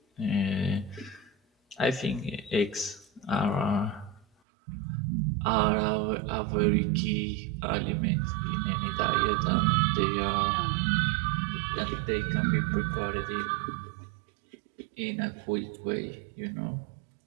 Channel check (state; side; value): drops out; left; at 4.2 s